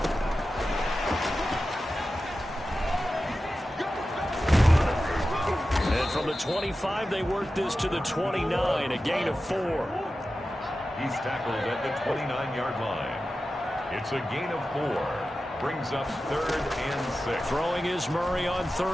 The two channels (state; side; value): normal; both; correlation 0.93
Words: From the 25, they work this to the 29, a gain of 4. He's tackled at the 29-yard line. It's a gain of 4. Brings up 3rd and 6. Throwing is Murray on